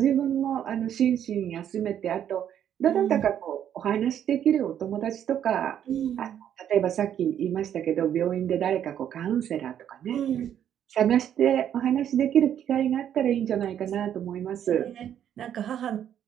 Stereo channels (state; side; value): quieter; left; 9.8 dB